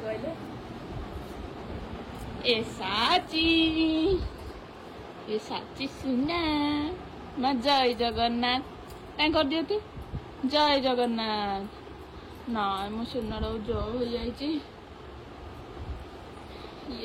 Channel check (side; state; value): both; identical; correlation 1.00